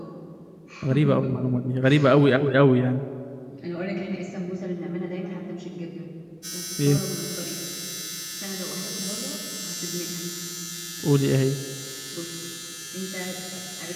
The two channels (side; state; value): both; identical; correlation 1.00